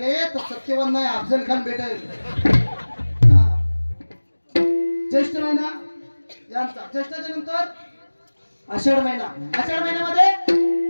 तर सत्यवान नाही अफजल खान भेटेल. ज्येष्ठ महिना यांचा. ज्येष्ठाच्या नंतर आषाढ महिन्यामध्ये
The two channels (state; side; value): inverted; both; correlation -1.00